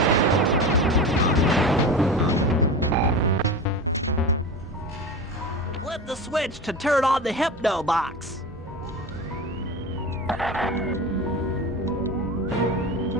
Flip the switch to turn on the hypno box.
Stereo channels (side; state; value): both; normal; correlation 0.28